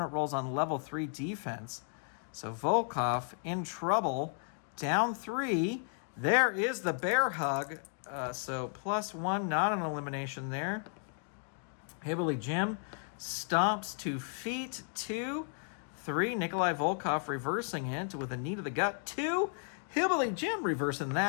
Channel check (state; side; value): silent; right; 55 dB below the other